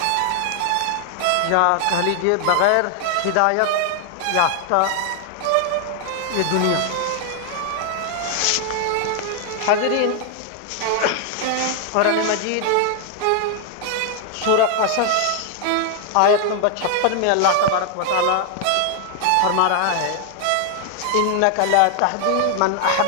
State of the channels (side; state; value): both; different; correlation 0.00